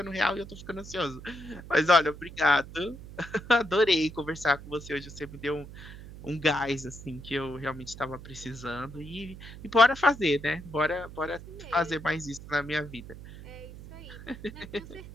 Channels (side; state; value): right; noise; hum, 15 dB below the sound